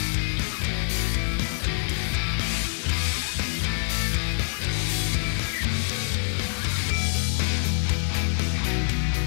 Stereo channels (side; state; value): right; silent; digital silence